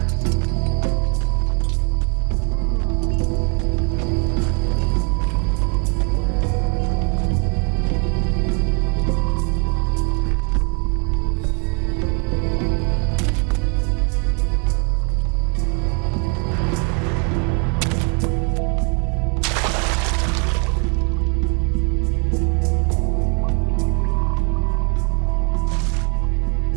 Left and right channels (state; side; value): quieter; left; 36.8 dB